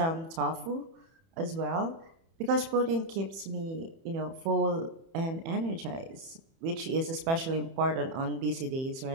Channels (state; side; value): late; left; 30 ms